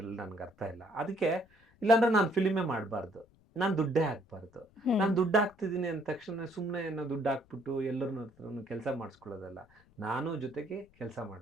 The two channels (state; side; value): noise; left; rumble, 30 dB below the sound